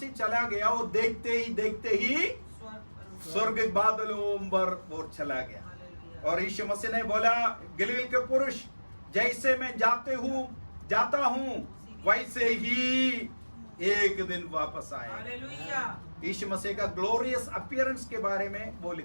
चला गया, वो देखते ही स्वर्ग के बादलों पर वो चला गया। हालेलुया। और यीशु मसीह ने बोला, गलील के पुरुष, जैसे मैं जाता हूँ वैसे ही एक दिन वापस आएगा। हालेलुया। यीशु मसीह का ग्लोरियस अपीयरेंस के बारे में वो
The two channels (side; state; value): both; inverted; correlation -1.00